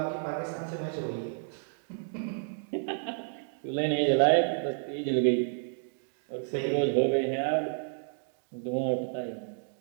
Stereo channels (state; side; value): silent; left; digital silence